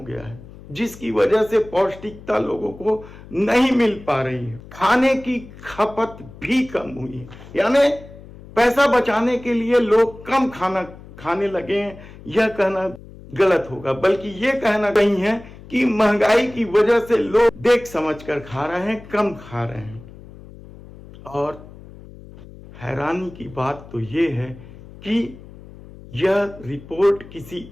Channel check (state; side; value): noise; left; hum, 18 dB below the sound